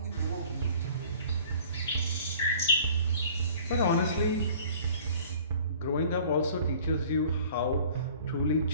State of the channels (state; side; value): inverted; both; correlation -0.50